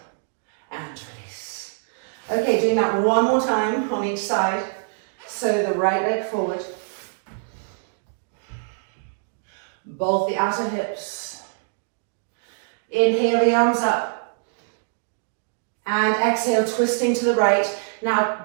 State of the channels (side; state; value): left; silent; digital silence